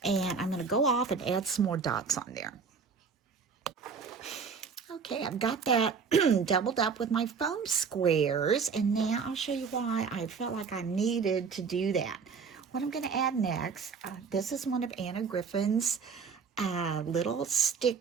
and I'm going to go off and add some more dots on there. Okay, I've got that doubled up with my foam squares, and now I'll show you why I felt like I needed to do that. What I'm going to add next, this is one of Anna Griffin's little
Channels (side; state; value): left; quieter; 5.6 dB